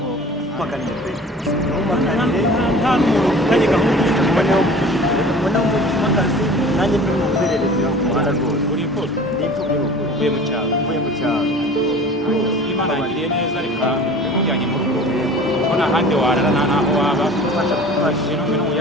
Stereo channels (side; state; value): both; normal; correlation 0.42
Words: makanije pe nta n'umuntu ufitanye gahunda ubona umutima akazi nanjye ndi muzererezi ku muhanda rwose ndipfubye uvuye mu cyaro Imana yagiriye neza reka bimujyanye mu rugo kuko nta handi warara nta naho waba fasha ibintu